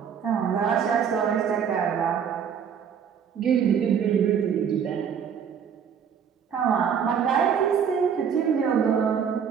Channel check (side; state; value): left; quieter; 7.5 dB